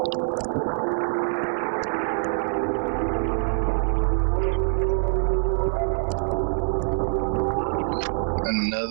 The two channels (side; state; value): left; silent; 62 dB below the other